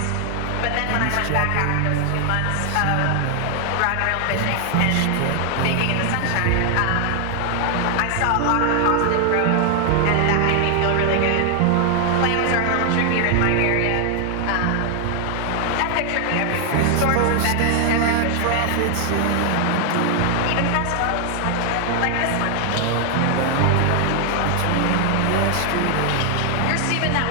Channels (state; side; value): different; both; correlation 0.00